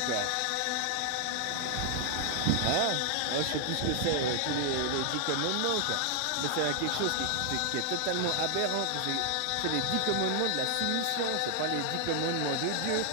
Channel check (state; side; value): different; both; correlation 0.00